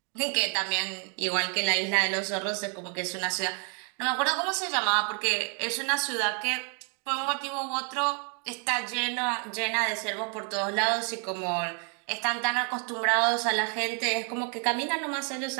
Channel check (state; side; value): quieter; left; 39.5 dB